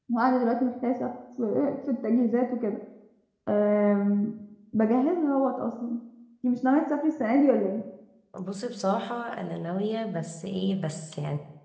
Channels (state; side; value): identical; both; correlation 1.00